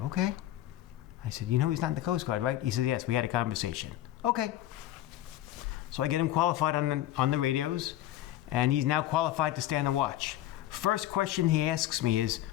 I said, you know he's not in the Coast Guard, right? He said, yes, we had a conversation. Okay. So I get him qualified on the radios, and he's now qualified to stay on the watch. First question he asks me is,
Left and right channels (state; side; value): quieter; right; 13.4 dB